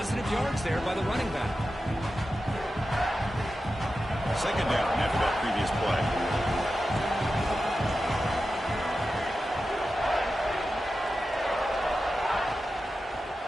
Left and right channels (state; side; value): normal; both; correlation 0.92